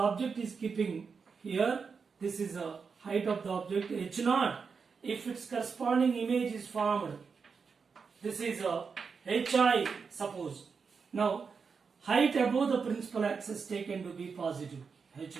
is keeping here, this is the height of the object h0. If its corresponding image is formed, this is a hi, suppose. Now height above the principal axis taken to be positive,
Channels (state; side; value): quieter; left; 5.5 dB